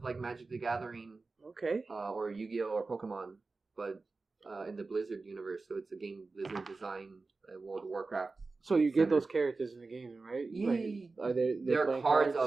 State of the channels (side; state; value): left; quieter; 3.8 dB